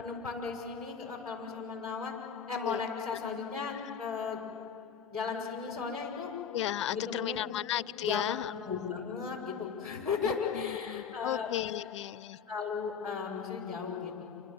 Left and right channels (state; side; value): quieter; right; 6.7 dB